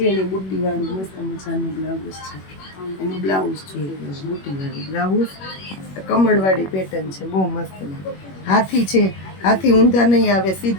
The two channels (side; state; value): right; late; 21 ms